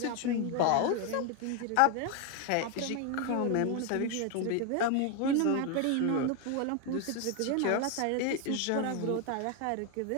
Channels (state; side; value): different; both; correlation 0.01